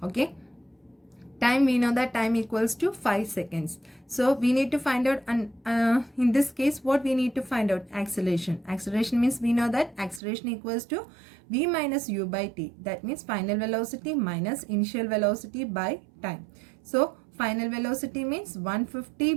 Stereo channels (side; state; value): left; drops out; at 10.2 s